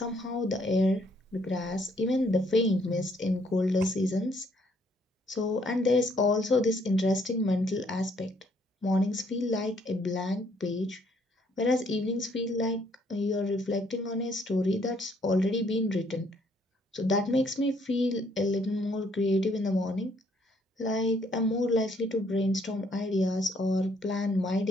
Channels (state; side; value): normal; both; correlation 0.67